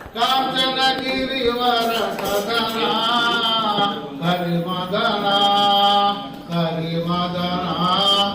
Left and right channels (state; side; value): identical; both; correlation 1.00